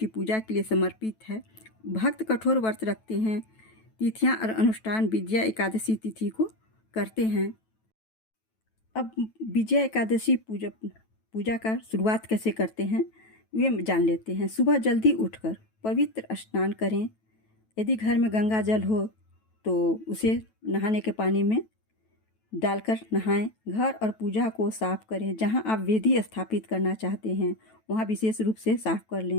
पूजा के लिए समर्पित है। भक्त कठोर व्रत रखते हैं। तिथियां और अनुष्ठान विजया एकादशी तिथि को करते हैं। अब विजया एकादशी पूजा का शुरुआत कैसे करते हैं वे जान लेते हैं। सुबह जल्दी उठकर पवित्र स्नान करें। यदि घर में गंगा जल हो तो उसे नहाने के पानी में डालकर नहाएं। घर और पूजा को साफ करें। जहां आप वेदी स्थापित करना चाहते हैं वहां विशेष रूप से साफ कर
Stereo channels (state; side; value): late; right; 9.1 ms